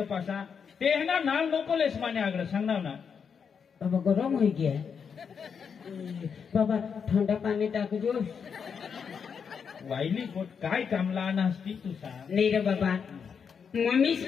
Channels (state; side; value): quieter; right; 6.6 dB